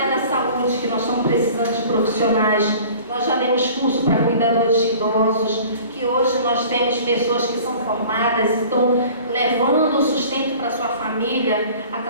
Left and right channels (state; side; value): inverted; both; correlation -0.46